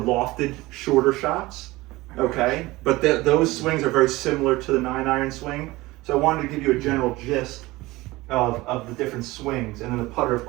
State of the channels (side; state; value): left; quieter; 20.1 dB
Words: shorter shots. Okay, but those swings are very similar to the 9-iron swing. So I wanted to give you a general gist of the different swings, and then the putter, of